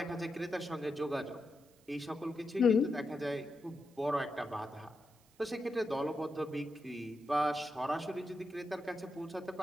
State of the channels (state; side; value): noise; right; hiss, 30 dB below the sound